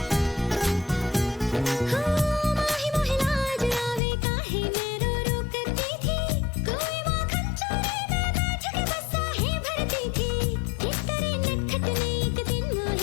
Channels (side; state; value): right; drops out; at 4.0 s